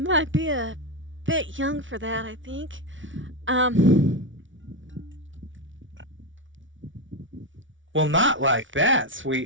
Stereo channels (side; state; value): left; late; 0.56 ms